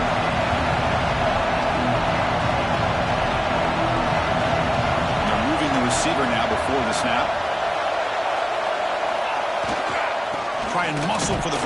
They're moving the receiver now before the snap. Try and muscle for the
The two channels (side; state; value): both; identical; correlation 1.00